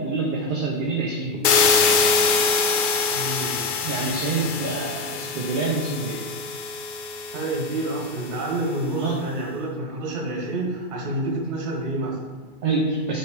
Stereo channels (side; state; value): left; late; 2.3 ms